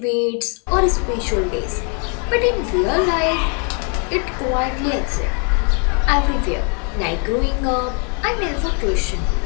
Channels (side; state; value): right; quieter; 39.7 dB